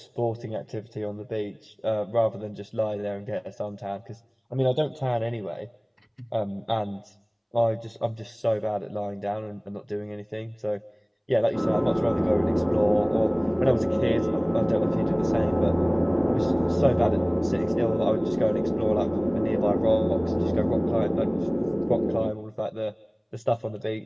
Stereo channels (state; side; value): identical; both; correlation 1.00